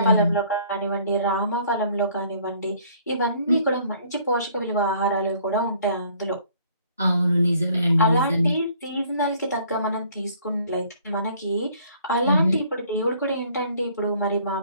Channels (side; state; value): both; inverted; correlation -0.58